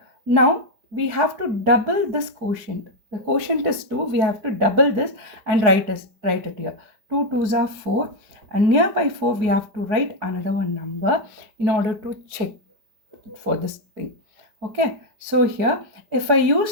Now we have to double this quotient. The quotient is 2. We have to double this and write it here. 2 2s are 4, and nearby 4 we have to write another one number in order to check for this thing. Okay, so here if I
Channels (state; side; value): late; left; 4.6 ms